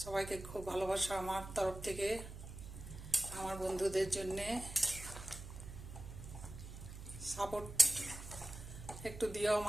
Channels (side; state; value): right; noise; hum, 11 dB below the sound